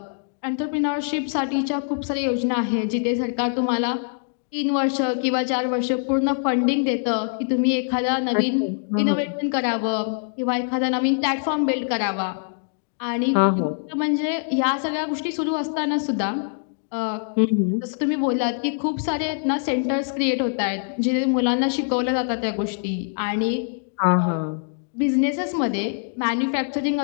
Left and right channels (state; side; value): silent; right; digital silence